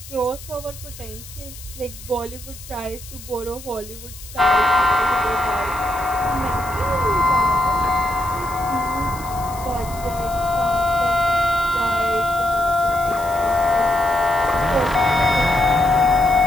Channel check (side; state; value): left; noise; hiss, 16 dB below the sound